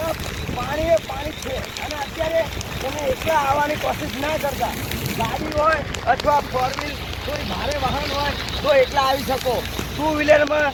પાણી છે. અને અત્યારે તમે એકલા આવવાની કોશિશ ના કરતા. ગાડી હોય અથવા 4 વ્હીલ કોઈ ભારે વાહન હોય તો એકલા આવી શકો. 2 વ્હીલરમાં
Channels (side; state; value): both; identical; correlation 1.00